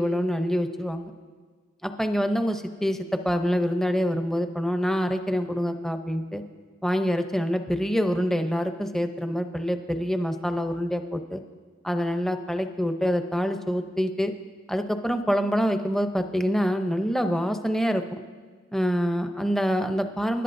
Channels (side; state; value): both; normal; correlation 0.93